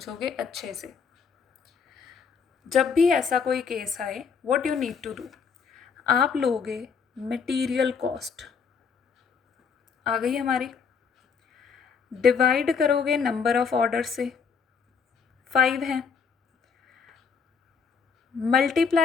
अच्छे से. जब भी ऐसा कोई केस आए, what you need to do, आप लोगे मटेरियल कॉस्ट आ गई हमारी, डिवाइड करोगे नंबर ऑफ ऑर्डर से, 5 हैं,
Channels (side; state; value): right; quieter; 5.9 dB